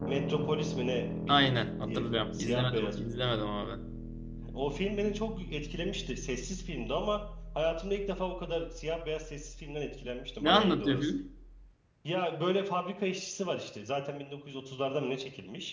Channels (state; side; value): identical; both; correlation 1.00